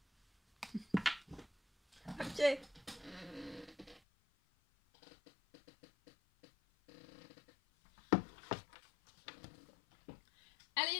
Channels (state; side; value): drops out; right; at 4.0 s